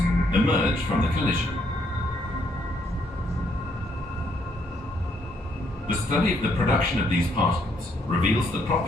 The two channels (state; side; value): normal; both; correlation 0.72